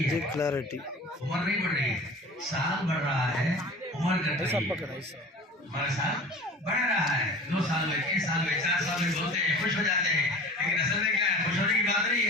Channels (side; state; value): both; normal; correlation 0.40